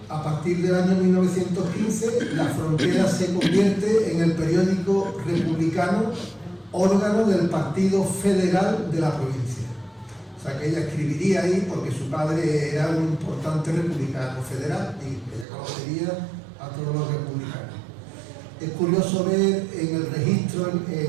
A partir del año 1915, La Frontera se convierte en el periódico republicano, órgano del Partido Federal de la provincia. O sea que ella escribiría ahí porque su padre era un importante republicano federal y ella conocería a todos los republicanos. Es curioso ver en el registro,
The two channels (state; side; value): drops out; left; at 15.5 s